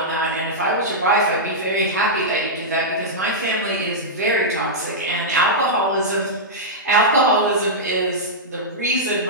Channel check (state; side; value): normal; both; correlation -0.10